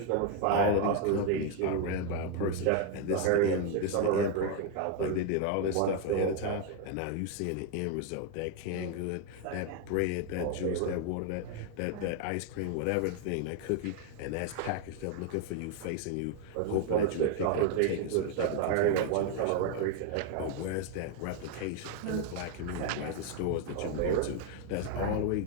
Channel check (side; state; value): both; different; correlation 0.01